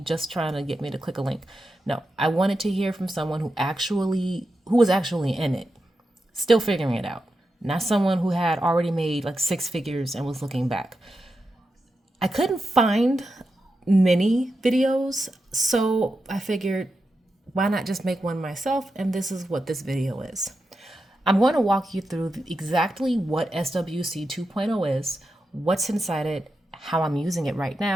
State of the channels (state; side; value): normal; both; correlation 0.88